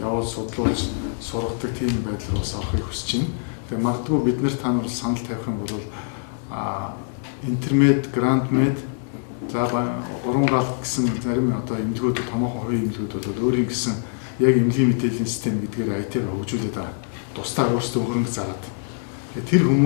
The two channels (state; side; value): silent; right; digital silence